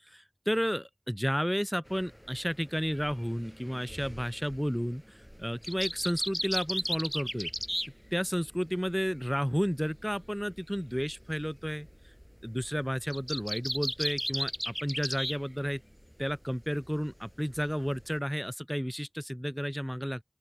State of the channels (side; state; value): both; identical; correlation 1.00